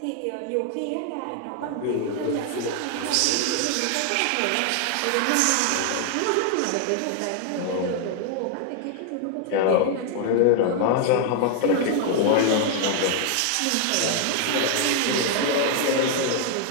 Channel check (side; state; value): both; different; correlation 0.00